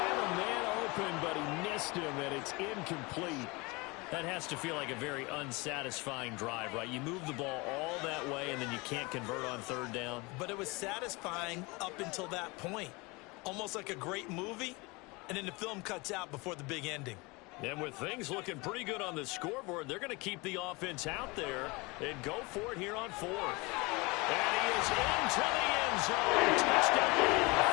a man open, but he missed him, and it's incomplete. That has to feel like a very unsatisfying drive, right? You move the ball all that way, and then you can't convert on 3rd down. But it was satisfying up until that point. Almost like a great movie, and then the film cuts out before the big ending. And with things looking pretty good on the scoreboard, they're going to keep the offense out there and go for it here on 4th. And he is into the end zone. Touchdown,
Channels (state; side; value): quieter; right; 25.7 dB